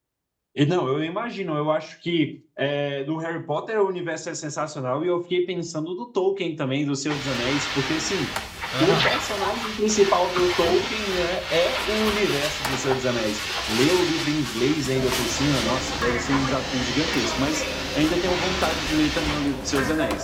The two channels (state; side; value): identical; both; correlation 1.00